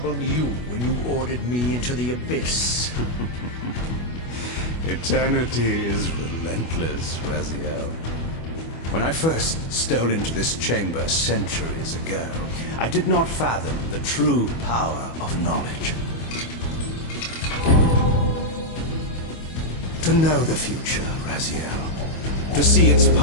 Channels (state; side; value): late; right; 25 ms